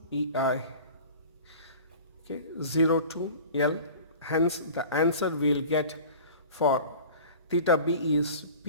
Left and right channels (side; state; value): both; inverted; correlation -0.41